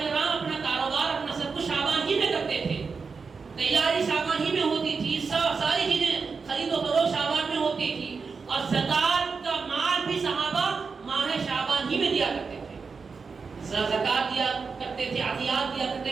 اپنا کاروبار، اپنا سب کچھ شعبان ہی میں کرتے تھے، تیاری شعبان ہی میں ہوتی تھی، ساری چیزیں خرید و فروخت شعبان میں ہوتی تھی، اور زکات کا مال بھی صحابہ ماہ شعبان ہی میں دیا کرتے تھے. زکات دیا کرتے تھے، عطیات دیا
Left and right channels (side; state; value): left; quieter; 5.0 dB